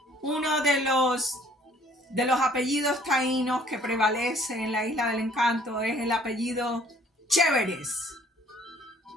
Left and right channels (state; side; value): normal; both; correlation 0.58